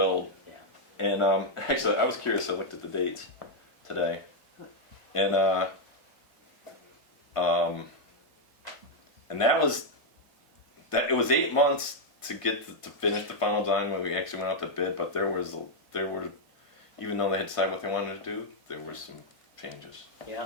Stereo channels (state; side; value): late; right; 1.5 ms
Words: Yeah. And actually, I was curious. I looked at the dates today, and it was 8 months to get to finish the final design when we actually went out to bid. But there were, even though they had decided what they wanted to do, there were some changes.